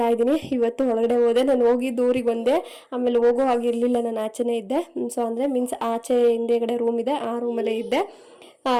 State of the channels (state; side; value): identical; both; correlation 1.00